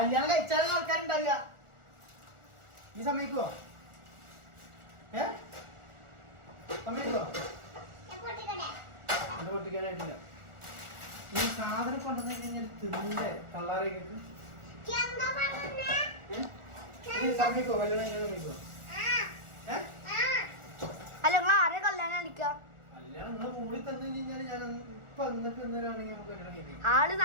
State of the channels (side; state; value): left; late; 1.4 ms